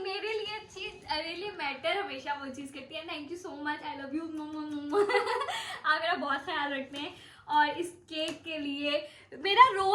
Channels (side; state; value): both; identical; correlation 1.00